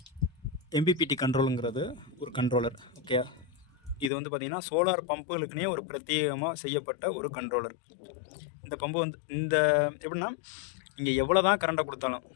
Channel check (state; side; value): drops out; right; at 4.1 s